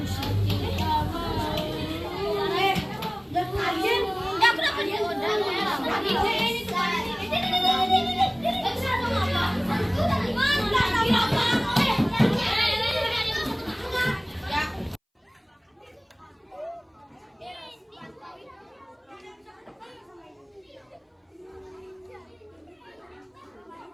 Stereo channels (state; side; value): identical; both; correlation 1.00